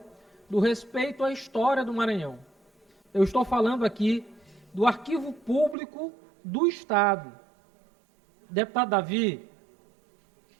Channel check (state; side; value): drops out; left; at 5.8 s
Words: do respeito à história do Maranhão. Eu estou falando aqui do Arquivo Público do Estado. Deputado Davi,